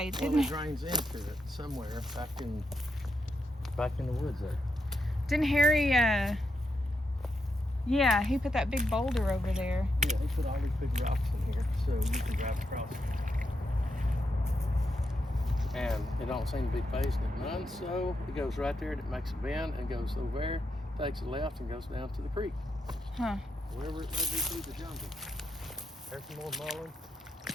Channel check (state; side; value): normal; both; correlation 0.83